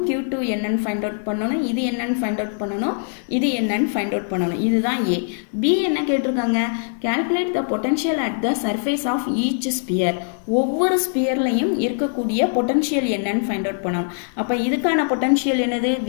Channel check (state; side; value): silent; right; 55 dB below the other